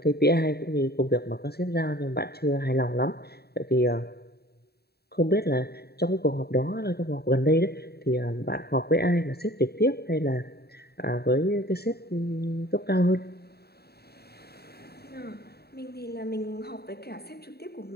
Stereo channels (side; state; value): right; late; 0.46 ms